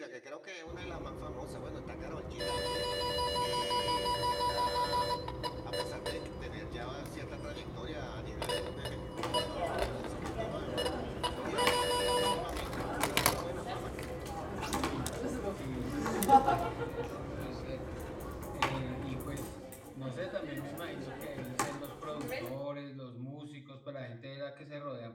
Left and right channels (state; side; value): identical; both; correlation 1.00